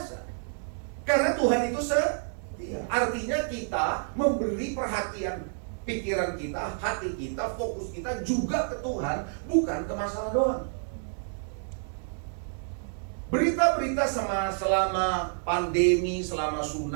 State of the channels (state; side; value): silent; left; digital silence